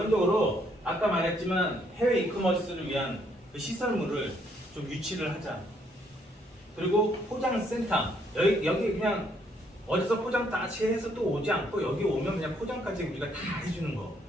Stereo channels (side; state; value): both; normal; correlation 0.70